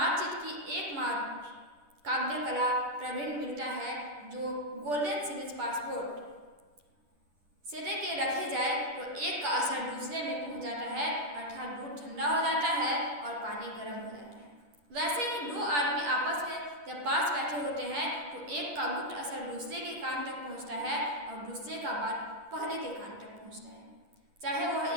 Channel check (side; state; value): left; late; 10 ms